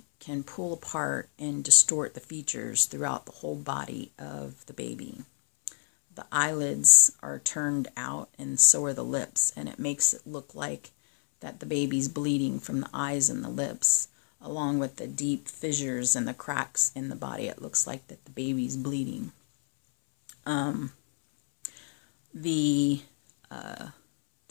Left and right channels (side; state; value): right; silent; 59 dB below the other